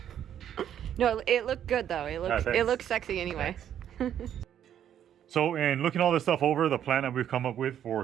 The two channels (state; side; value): quieter; left; 10.0 dB